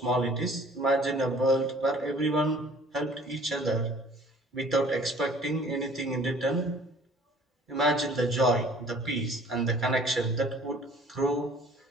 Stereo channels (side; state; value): both; normal; correlation 0.51